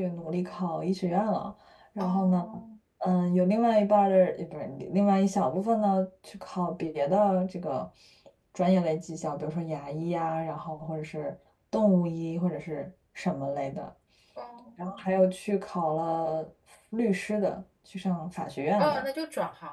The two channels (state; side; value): identical; both; correlation 1.00